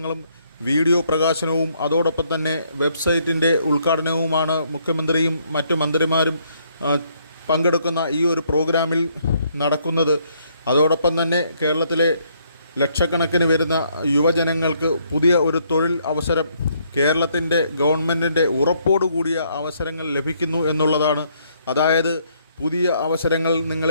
വീഡിയോ പ്രകാശനവും അതോടൊപ്പം തന്നെ വെബ്സൈറ്റിൻ്റെ ഉദ്ഘാടനവുമാണ് മുഖ്യമന്ത്രിയും മറ്റു മന്ത്രിമാരും പങ്കെടുക്കുന്ന ഈ ഒരു പ്രോഗ്രാമിൽ നടക്കുന്നത്. അതോടൊപ്പം തന്നെ കേരളത്തിലെ ലക്ഷക്കണക്കിന് വരുന്ന യുവജനങ്ങൾക്ക് പുതിയ ഒരു തൊഴിൽ അവസരം കേരളത്തിൻ്റെ ഗവൺമെൻറ്റിൻ്റെ ഉറപ്പോടുകൂടിയ അവസരങ്ങൾ ലഭിക്കുന്നു എന്നുള്ളതാണ്. അതായത് പുതിയ അവസരങ്ങൾ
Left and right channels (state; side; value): inverted; both; correlation -0.69